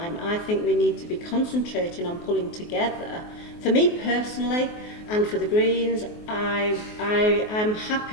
I think we need to be concentrating on pulling together. For me personally, and for the Greens, I'm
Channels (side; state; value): right; late; 24 ms